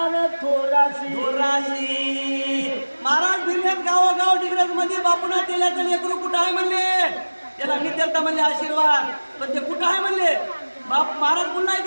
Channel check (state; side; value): inverted; both; correlation -1.00